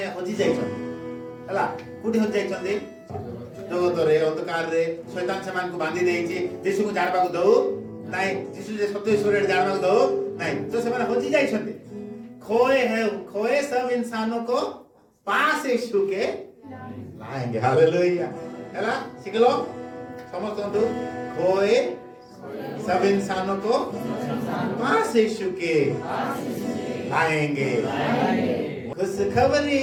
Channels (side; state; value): both; identical; correlation 1.00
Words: हजी जाइछन हला कुटी हजी जाइछन जगत रे अंधकार रे शैतान समान को बांधी देइछि यीशु को जाणबा को दउ नहीं यीशु जे सत्य ईश्वर जाणबा को दउ नहीं तो से माने हजी जाइछन खोए सब इंसानों को पास यीशु के लाएंगे हालेलुया हला सिखलो समझतो खोए सब इंसानों को पास यीशु के लाएंगे खुशखबरी